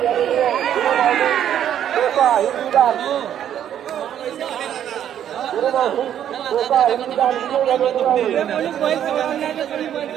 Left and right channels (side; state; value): left; quieter; 10.2 dB